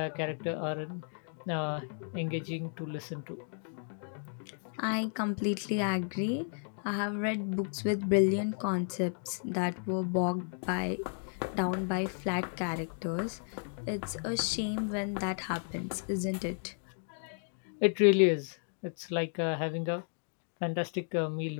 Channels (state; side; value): silent; right; 55 dB below the other